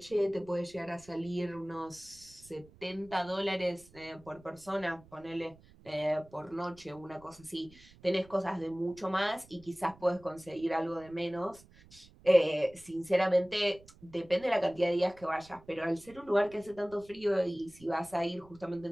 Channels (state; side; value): noise; right; rumble, 24 dB below the sound